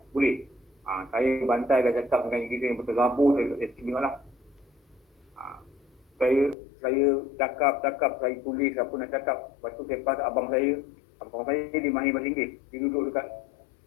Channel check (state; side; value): drops out; right; at 6.6 s